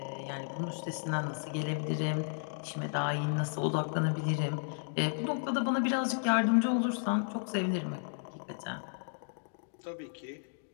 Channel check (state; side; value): silent; right; digital silence